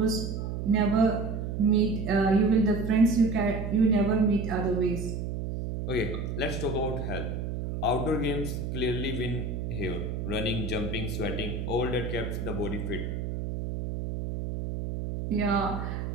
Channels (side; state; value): right; noise; hum, 4 dB below the sound